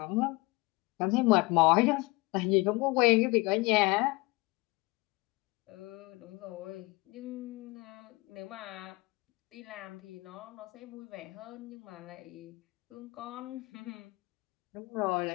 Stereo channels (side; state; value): right; quieter; 23.7 dB